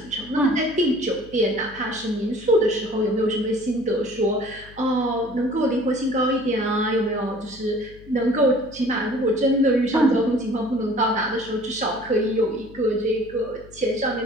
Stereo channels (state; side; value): noise; left; hum, 21 dB below the sound